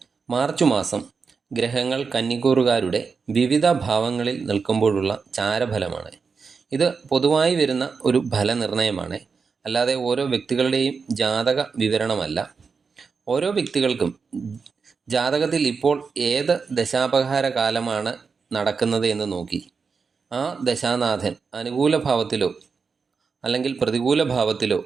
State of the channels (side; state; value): left; quieter; 5.2 dB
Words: മാർച്ച് മാസം ഗ്രഹങ്ങൾ കന്നിക്കൂറുകാരുടെ വിവിധ ഭാവങ്ങളിൽ നിൽക്കുമ്പോഴുള്ള ചാരഫലമാണ്. ഇത് പൊതുവായി വരുന്ന ഒരു ഫലനിർണയമാണ്, അല്ലാതെ ഓരോ വ്യക്തികളുടെയും ജാതക വിവരണമല്ല. ഓരോ വ്യക്തികൾക്കും ജാതകത്തിൽ ഇപ്പോൾ ഏത് ദശാപഹാര കാലമാണ് നടക്കുന്നത് എന്ന് നോക്കി ആ ദശാനാഥൻ അനുകൂല ഭാവത്തിലോ അല്ലെങ്കിൽ പ്രതികൂല ഭാവത്തിലോ